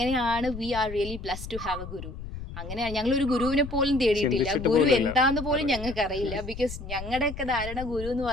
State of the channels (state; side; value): noise; left; rumble, 10 dB below the sound